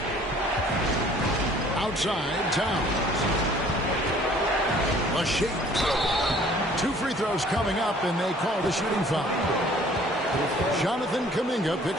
Outside, Towns. A shake. 2 free throws coming up, and they call the shooting foul. Jonathan Kuminga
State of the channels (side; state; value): both; normal; correlation 0.55